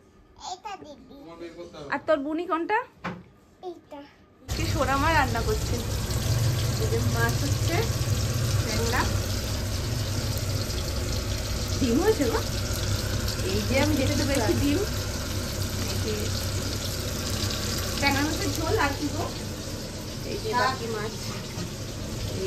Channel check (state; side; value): identical; both; correlation 1.00